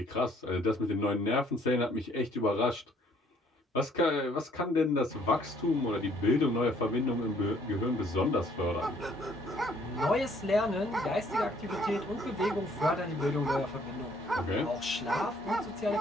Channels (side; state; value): both; normal; correlation 0.62